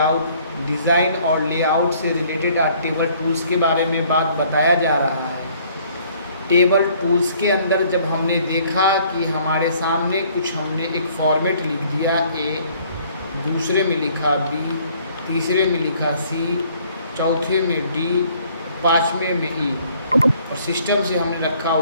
डिज़ाइन और लेआउट से रिलेटेड आज टेबल टूल्स के बारे में बात बताया जा रहा है। टेबल टूल्स के अंदर जब हमने देखा कि हमारे सामने कुछ हमने एक फॉर्मेट लिख दिया A, दूसरे में लिखा B, तीसरे में लिखा C, चौथे में D, पाँचवें में E, और सिस्टम से हमने रखा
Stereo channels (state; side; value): inverted; both; correlation -0.60